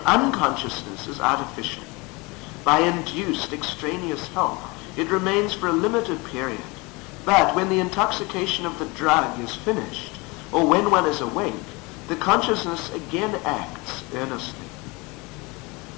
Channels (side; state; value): right; quieter; 26.0 dB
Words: Unconsciousness is artificial. By induced extraneous help, it remains for a limited period, but when the intoxication of the drug is finished, or when one is awake, the consciousness again acts earnestly.